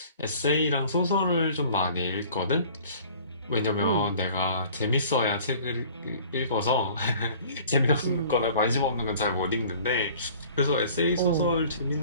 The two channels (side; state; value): both; inverted; correlation -0.49